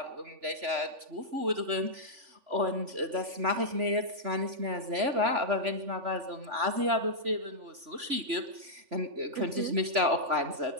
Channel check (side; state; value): left; late; 3.5 ms